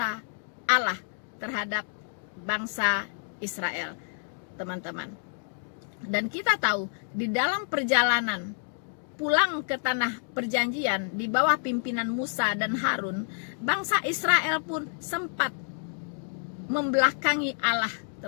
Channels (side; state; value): right; silent; digital silence